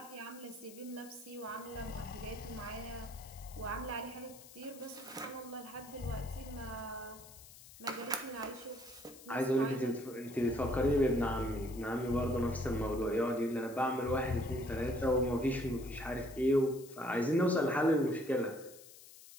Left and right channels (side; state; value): left; noise; hiss, 19 dB below the sound